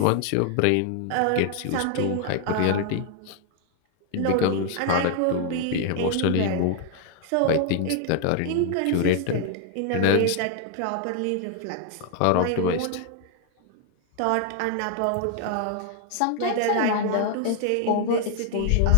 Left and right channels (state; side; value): different; both; correlation 0.00